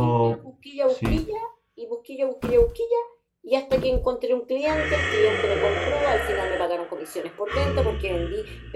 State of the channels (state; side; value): identical; both; correlation 1.00